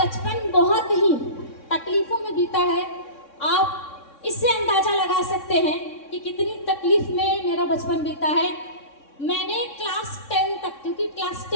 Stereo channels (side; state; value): right; late; 3.6 ms